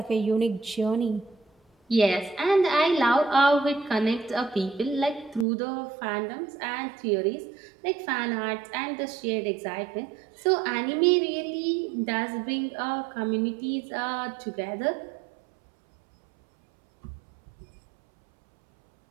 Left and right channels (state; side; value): drops out; left; at 5.5 s